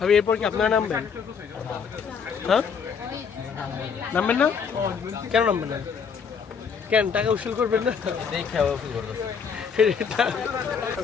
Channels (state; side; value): quieter; right; 6.3 dB